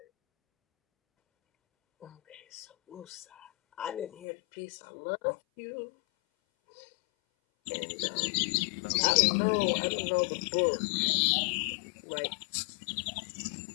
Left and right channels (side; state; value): right; drops out; at 4.2 s